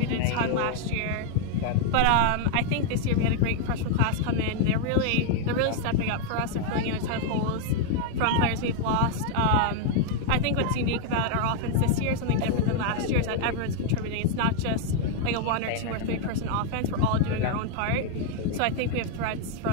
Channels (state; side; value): different; both; correlation 0.00